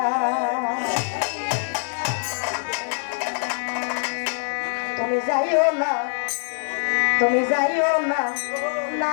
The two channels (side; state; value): right; silent; digital silence